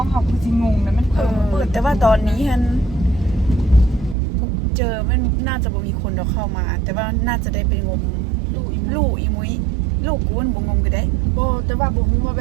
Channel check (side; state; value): left; drops out; at 4.2 s